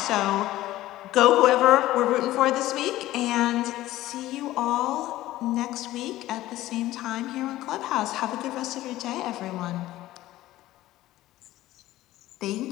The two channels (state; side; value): quieter; right; 15.7 dB